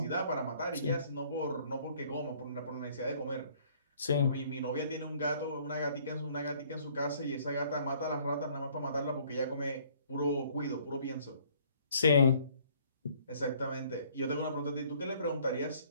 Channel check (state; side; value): inverted; both; correlation -0.59